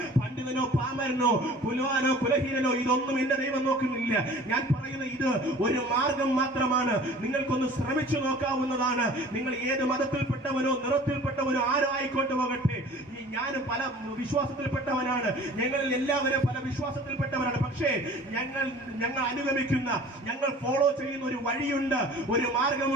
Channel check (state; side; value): normal; both; correlation 0.46